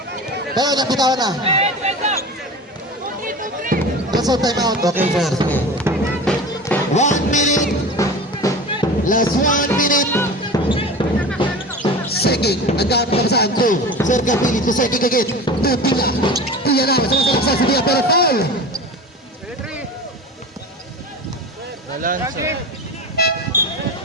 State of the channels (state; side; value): normal; both; correlation 0.32